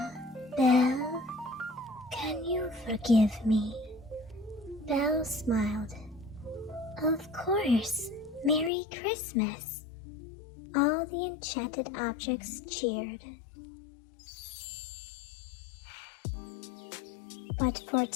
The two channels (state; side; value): drops out; right; at 8.7 s